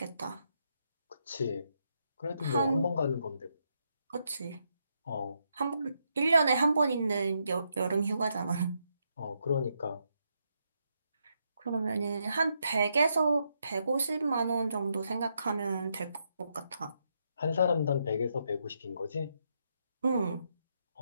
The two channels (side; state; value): both; inverted; correlation -0.79